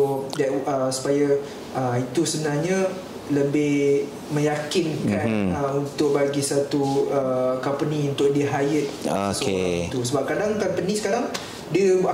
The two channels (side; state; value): both; identical; correlation 1.00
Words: that supaya itu sebenarnya lebih meyakinkan untuk bagi satu company untuk dia hire tu. Sebab kadang company sekarang dia